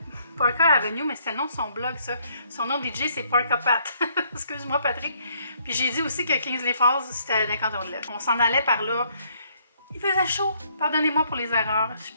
Parker Avenue, mais c'était le nom de son blog, ça. Son nom de DJ c'est Parker Pat. Excuse-moi, Patrick. Puis j'ai dit aussi que Kingsley Falls c'était d'un canton de l'Est. On s'en allait par là. Il faisait chaud. Pardonnez-moi pour les erreurs. Je suis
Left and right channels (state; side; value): inverted; both; correlation -0.68